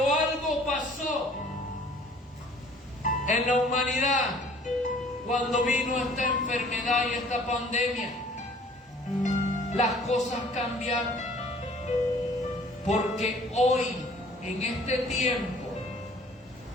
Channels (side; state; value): both; normal; correlation 0.54